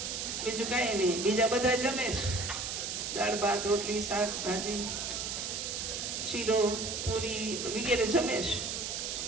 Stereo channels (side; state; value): right; noise; hiss, 3 dB below the sound